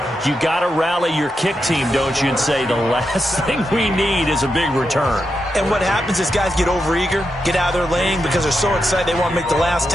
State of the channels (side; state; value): both; normal; correlation 0.86